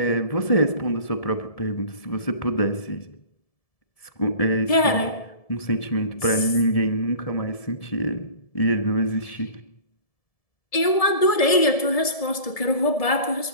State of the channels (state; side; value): late; right; 1.7 ms